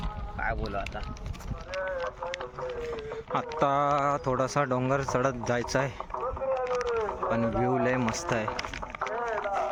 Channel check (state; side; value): identical; both; correlation 1.00